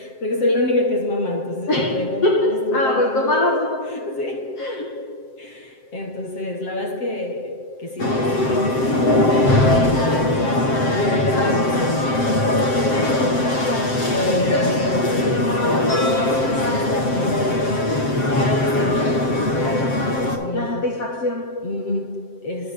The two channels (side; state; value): right; late; 7.7 ms